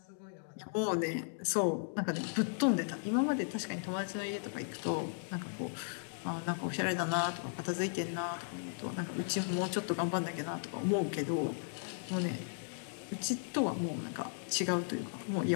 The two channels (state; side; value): silent; right; digital silence